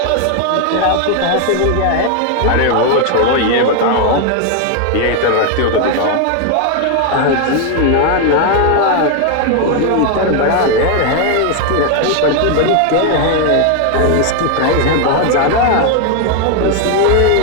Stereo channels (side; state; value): both; different; correlation 0.01